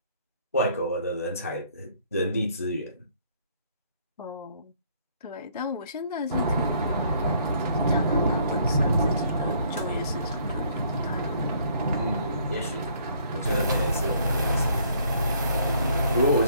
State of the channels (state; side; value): inverted; both; correlation -0.63